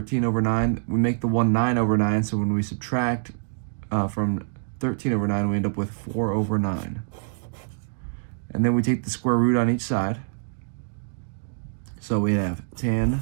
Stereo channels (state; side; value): silent; left; digital silence